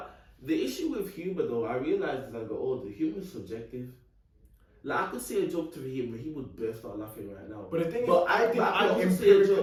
the issue with humor though, I realized as I got older, humor is subjective. Like, I could say a joke to him, but he would burst out laughing right now. But the thing is, But I think I I'm also say a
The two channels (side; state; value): both; identical; correlation 1.00